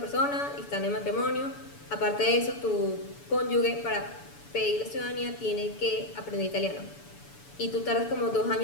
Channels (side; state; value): right; late; 7.0 ms